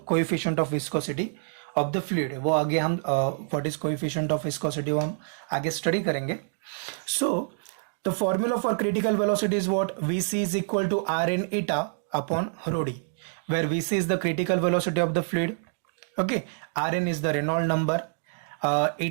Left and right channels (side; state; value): left; silent; digital silence